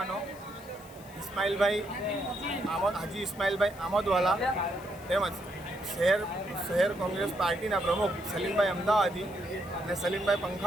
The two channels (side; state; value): left; noise; hiss, 22 dB below the sound